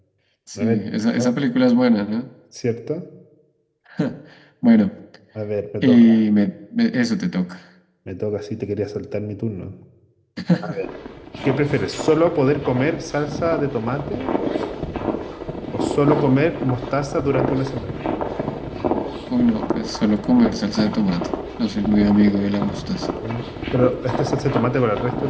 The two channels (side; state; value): both; identical; correlation 1.00